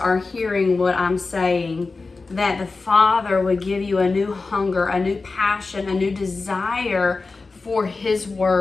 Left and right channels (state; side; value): quieter; right; 3.9 dB